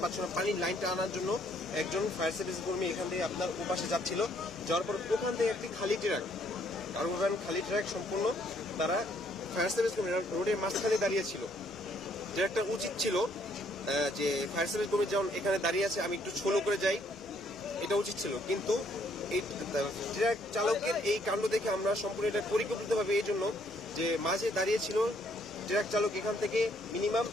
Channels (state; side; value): normal; both; correlation 0.67